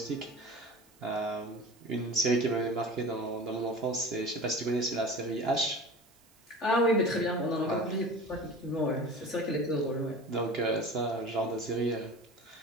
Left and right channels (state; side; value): noise; right; hiss, 30 dB below the sound